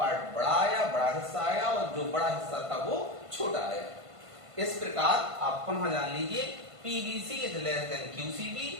बड़ा आया, बड़ा हिस्सा आया, और जो बड़ा हिस्सा था वो छोटा आया। इस प्रकार आप पुनः जान लीजिए पीबीसी इज लेस देन क्यूसीबी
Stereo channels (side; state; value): left; late; 1.5 ms